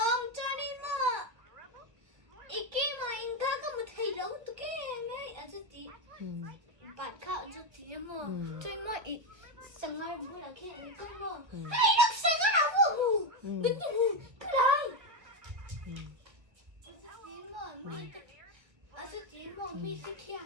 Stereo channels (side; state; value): left; late; 1.3 ms